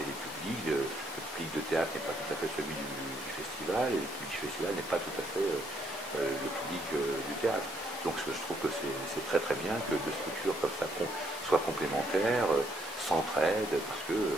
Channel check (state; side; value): normal; both; correlation 0.71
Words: les publics. Le public de théâtre n'est pas tout à fait celui du festival, et le public du festival n'est pas tout à fait le public du théâtre. Donc je trouve que c'est très très bien que deux structures comme ça soient complémentaires, s'entraident, parce que